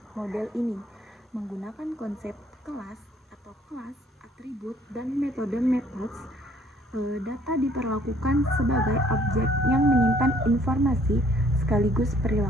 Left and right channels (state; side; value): normal; both; correlation 0.61